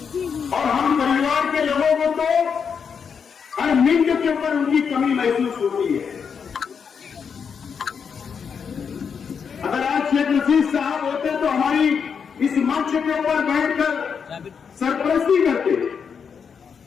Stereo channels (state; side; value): quieter; right; 6.5 dB